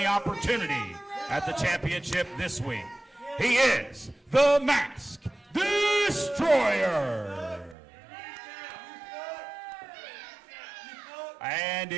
opportunity at the championship this week. He is the Mask Destroyer. And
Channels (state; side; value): drops out; left; at 7.8 s